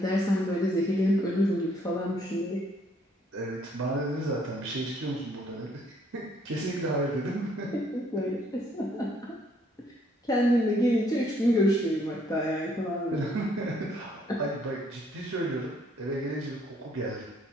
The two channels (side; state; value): both; normal; correlation 0.66